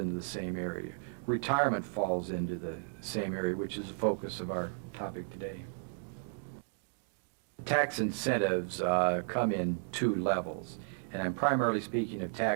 the same area. Retirement falls into the same area, which is the focus of our topic today. Tax incentives come in two levels, and I'm primarily speaking of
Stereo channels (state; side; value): silent; left; digital silence